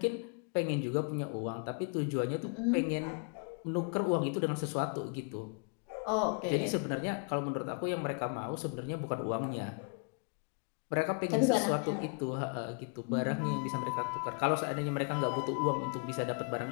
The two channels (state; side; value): quieter; right; 37.4 dB